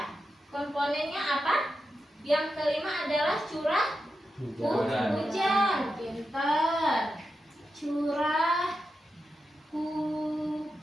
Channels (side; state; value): both; normal; correlation 0.89